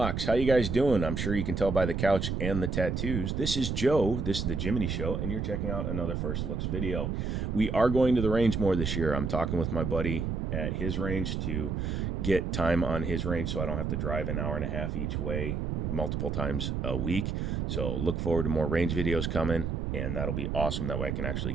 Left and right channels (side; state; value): right; noise; rumble, 1 dB below the sound